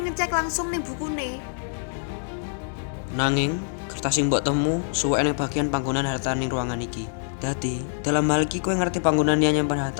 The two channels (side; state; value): right; silent; digital silence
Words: ngecek langsung ning bukune. Nanging kertas sing mbok temu suwek ning bagian panggonan harta ning ruangan iki. Dadi dalam hal iki kowe ngerti panggonan dia nyimpen